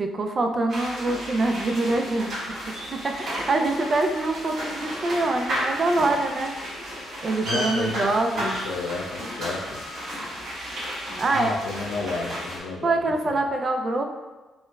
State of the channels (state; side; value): normal; both; correlation 0.80